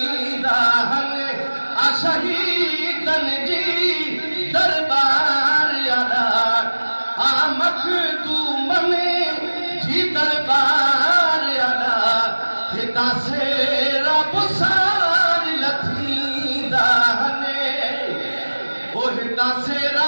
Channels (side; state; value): both; inverted; correlation -1.00